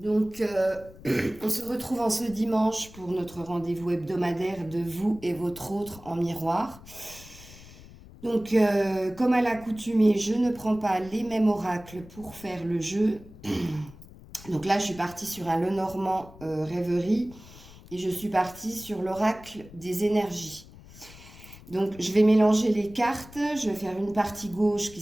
on se retrouve en ce dimanche pour notre rendez-vous hebdomadaire de vous et votre autre en miroir. Donc, comme à l'accoutumée, je ne prends pas les mêmes oracles pour faire le jeu. Donc là, je suis partie sur un Lenormand rêverie et je suis partie sur l'oracle des énergies. Donc, je vais mélanger les cartes. Je vais faire une partie gauche qui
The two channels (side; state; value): left; noise; rumble, 19 dB below the sound